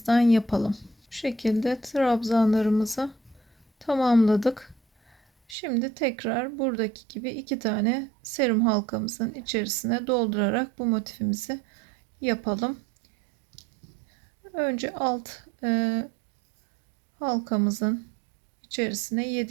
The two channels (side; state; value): left; drops out; at 5.6 s